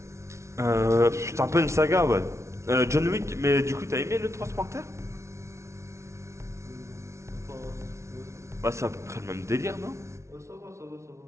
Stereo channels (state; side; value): late; left; 0.13 ms